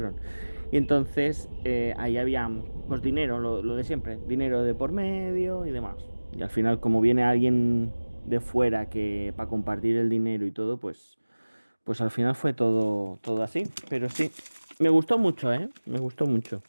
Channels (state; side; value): inverted; both; correlation -1.00